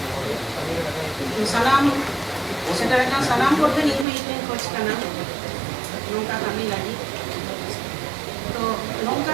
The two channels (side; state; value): left; drops out; at 4.0 s